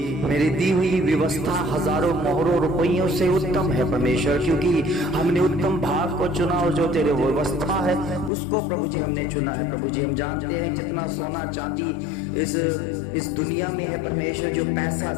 मेरी दी हुई व्यवस्था हजारों मोहरों रुपयों से उत्तम है परमेश्वर, क्योंकि हमने उत्तम भाग को चुना और जो तेरे व्यवस्था है उसको प्रभु जी हमने चुना है प्रभु जी। हम जानते हैं जितना सोना चांदी इस दुनिया में है परमेश्वर, जो पैसा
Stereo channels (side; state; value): right; drops out; at 8.3 s